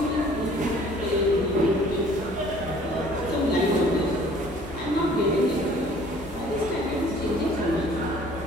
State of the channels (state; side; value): normal; both; correlation 0.54